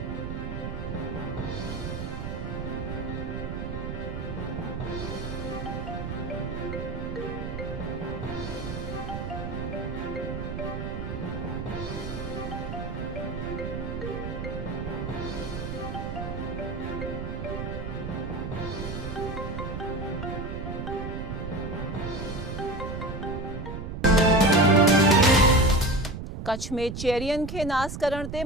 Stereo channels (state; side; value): noise; right; rumble, 6 dB below the sound